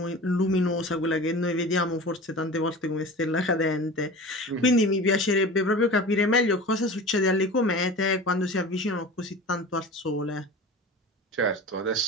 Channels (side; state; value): both; normal; correlation 0.35